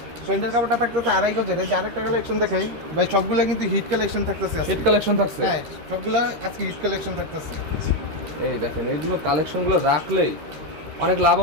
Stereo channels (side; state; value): left; late; 13 ms